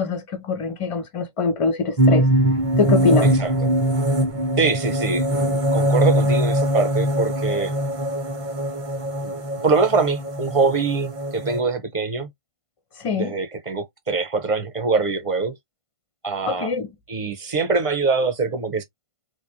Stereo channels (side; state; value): right; late; 1.5 ms